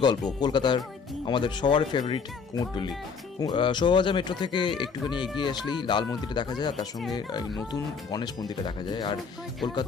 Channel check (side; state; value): right; quieter; 5.6 dB